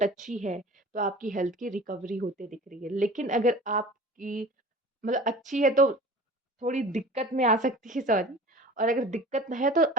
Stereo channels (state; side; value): normal; both; correlation 0.41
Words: अच्छी है, तो आपकी हेल्थ की रिकवरी होते दिख रही है। लेकिन अगर आपकी मतलब अच्छी है तो थोड़ी दिक्कत में आ सकती है, सॉरी। और अगर दिक्कत है तो